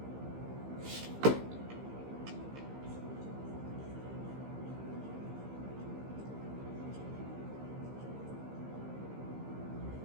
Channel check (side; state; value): left; late; 15 ms